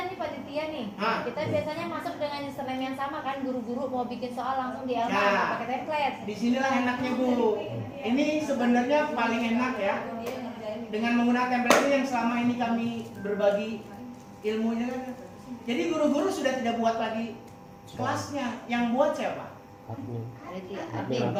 nih panitia nih. Hah? Kita biasanya masuk dengan username yang sama kan, guru-guru mau bikin soal langsung di Elma Ya. pakai template. Disinilah enaknya bu. Ini sebenarnya paling enak ya. Dengan menggunakan template ini yang selama ini kami berbagi ilmunya kan. Jadi guru-guru sudah tidak buat lagi kelasnya. Yang buat siapa? Admin. Admin.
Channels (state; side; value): identical; both; correlation 1.00